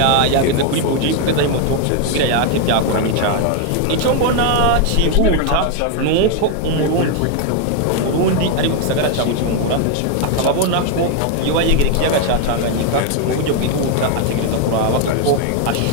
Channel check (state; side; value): different; both; correlation 0.01